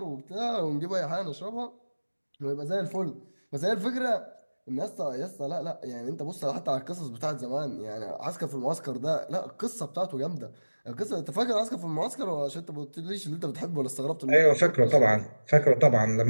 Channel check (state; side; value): inverted; both; correlation -1.00